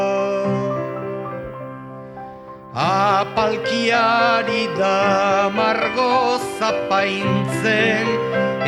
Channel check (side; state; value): both; identical; correlation 1.00